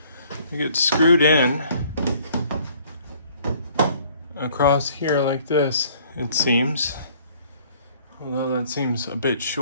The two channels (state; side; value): inverted; both; correlation -0.58